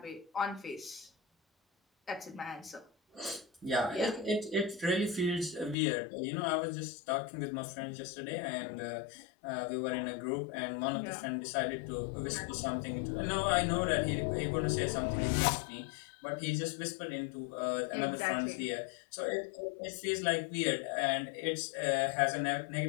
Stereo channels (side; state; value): right; drops out; at 5.8 s